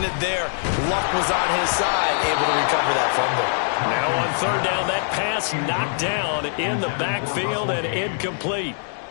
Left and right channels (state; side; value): silent; right; digital silence